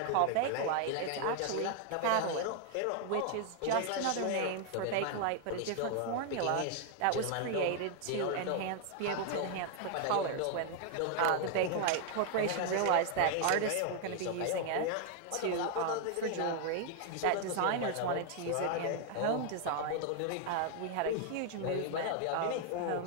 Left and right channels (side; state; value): both; different; correlation 0.00